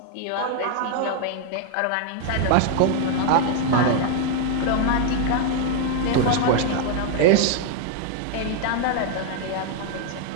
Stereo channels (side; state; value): both; different; correlation 0.00